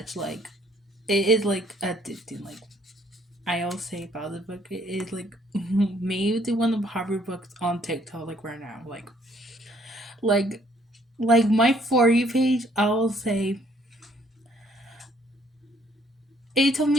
Like, it is like addicting. Like, I always say about this book, it is like maybe one of the popular books on TikTok, like right now. Like, like my For You page, I will say it took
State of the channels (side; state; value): both; normal; correlation 0.64